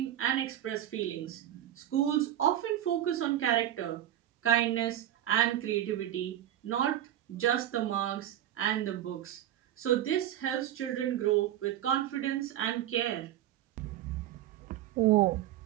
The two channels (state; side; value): quieter; left; 12.0 dB